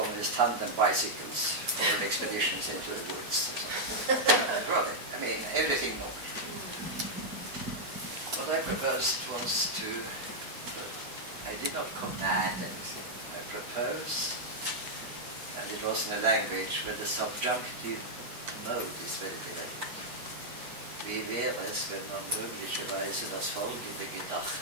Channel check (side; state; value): left; late; 8.0 ms